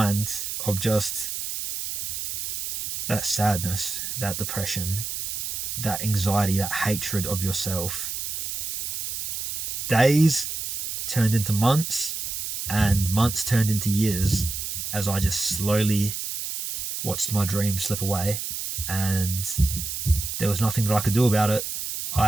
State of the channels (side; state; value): right; noise; hiss, 4 dB below the sound